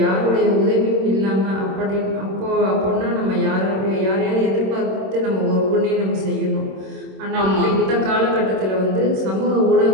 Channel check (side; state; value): left; late; 26 ms